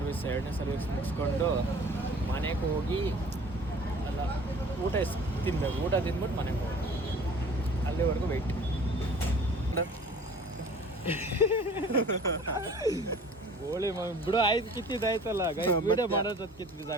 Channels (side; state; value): both; normal; correlation 0.47